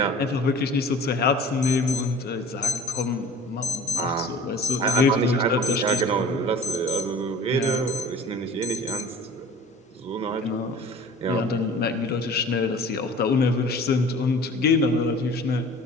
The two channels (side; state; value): both; normal; correlation 0.44